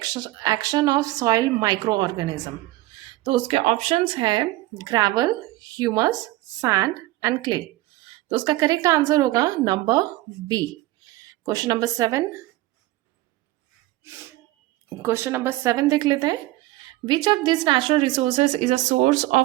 action of soil microorganism। तो उसके ऑप्शंस है gravel, humus, sand and clay. तो उसका करेक्ट आंसर होगा number B. Question number 7, question number 7 देख लेते हैं। Which of this natural resources is a source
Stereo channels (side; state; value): left; quieter; 17.8 dB